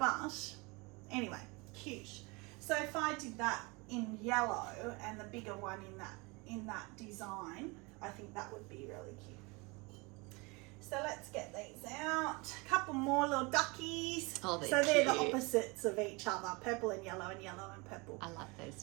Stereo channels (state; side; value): quieter; left; 27.1 dB